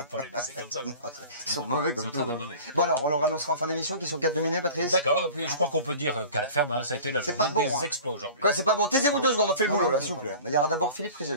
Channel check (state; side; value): inverted; both; correlation -0.41